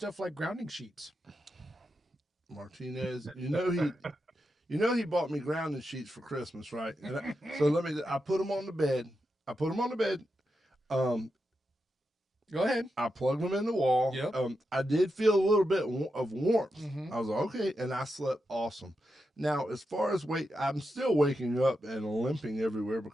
like grounding sheets. Martinez, he bought me grounding sheets for Christmas, right? And I put them on the bed. Go ahead. I plugged them in the wall. Yep. I did feel a little bit of warmth. Mhm. I was like, okay, and I slept awesome. Now, as far as weight, I'm still waking up and limping everywhere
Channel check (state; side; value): normal; both; correlation 0.87